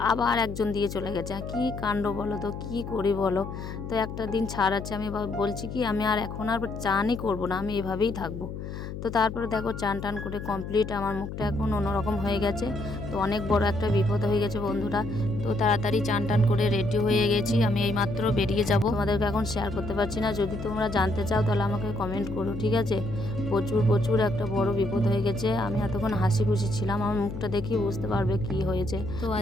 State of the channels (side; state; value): left; noise; hum, 8 dB below the sound